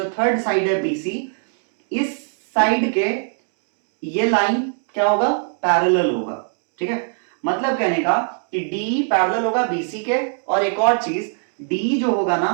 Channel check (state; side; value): silent; left; 65 dB below the other